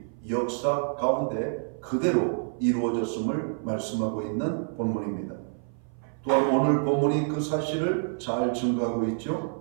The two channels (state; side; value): silent; left; 55 dB below the other